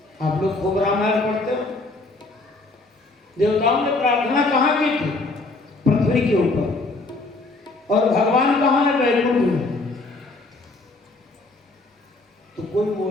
आप लोग खूब रामायण पढ़ते हो। देवताओं ने प्रार्थना कहाँ की थी? पृथ्वी के ऊपर। और भगवान कहाँ है? वैकुंठ में। तो कोई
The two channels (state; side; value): quieter; right; 3.2 dB